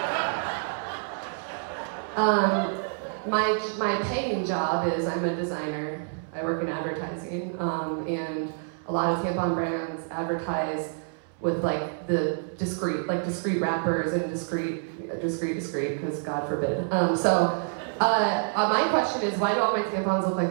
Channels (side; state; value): left; silent; digital silence